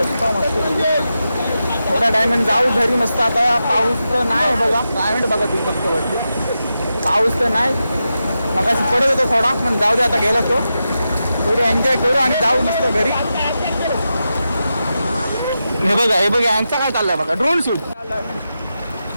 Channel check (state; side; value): inverted; both; correlation -0.89